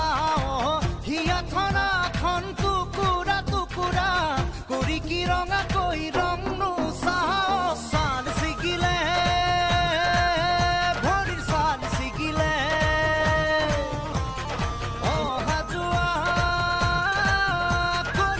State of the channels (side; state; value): both; identical; correlation 1.00